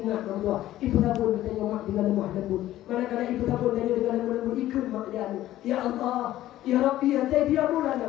berdua. Ibu tabun ditanya mak di dalam mak lembut. Manakala ibu tabun tanya di dalam mak lembut. Ikut mak dia. Ya Allah. Ya Rabbi ya Sayyidi ya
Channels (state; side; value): quieter; right; 14.2 dB